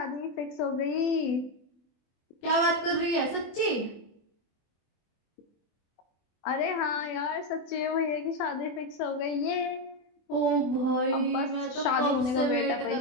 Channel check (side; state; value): right; late; 24 ms